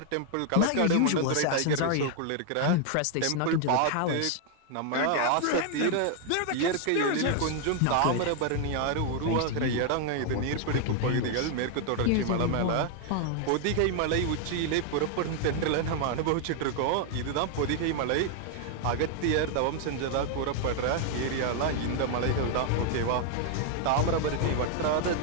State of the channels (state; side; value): different; both; correlation 0.00